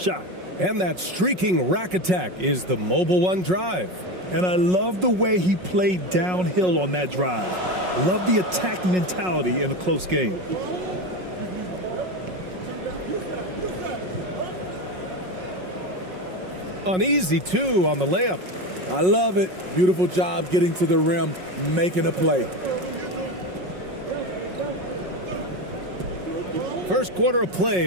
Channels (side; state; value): left; late; 5.5 ms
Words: And that streaking rack attack is the Mobile One drive. And I love the way he played downhill on that drive. Love the attack mentality in a close game. An easy 2 on the layup. I love it. Beautiful job getting to the rim, making a play. First quarter of